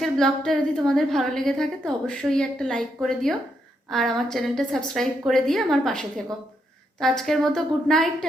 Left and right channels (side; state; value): both; normal; correlation 0.79